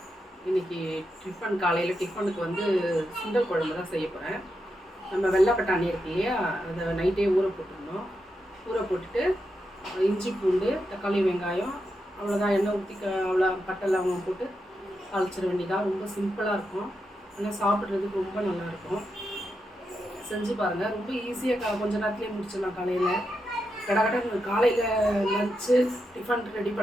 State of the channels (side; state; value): both; normal; correlation 0.86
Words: இன்றைக்கி காலையில் டிஃபனுக்கு வந்து சுண்டல் குழம்பு தான் செய்ய போகிறேன். நம்ம வெள்ளை பட்டாணி இருக்கு இல்லையா, அதை நைட்டே ஊற போட்டுருந்தோம். ஊற போட்டுட்டு இஞ்சி பூண்டு தக்காளி வெங்காயம் அவ்வளோதான், எண்ணெய் ஊற்றி அவ்வளோ பட்டை லவங்கம் போட்டு தாளிச்சிட வேண்டியதான். ரொம்ப சிம்பிளாக இருக்கும், ஆனால் சாப்பிட்றதுக்கு ரொம்ப நல்லாயிருக்கும். செஞ்சு பாருங்கள், ரொம்ப ஈஸியாக கொஞ்சம் நேரத்துலேயே முடிச்சிடலாம். காலையில் கடை காலையில் லஞ்சு டிஃபன் ரெடி